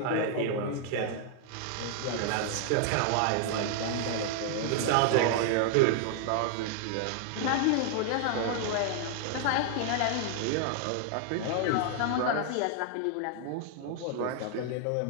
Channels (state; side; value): different; both; correlation 0.00